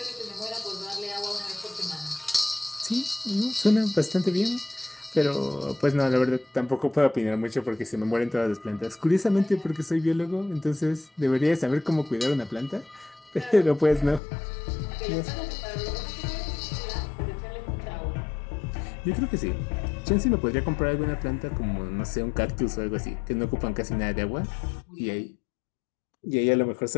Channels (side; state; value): right; drops out; at 14.2 s